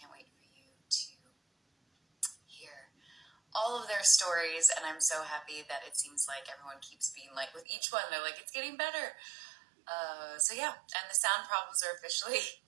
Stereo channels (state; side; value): drops out; left; at 7.7 s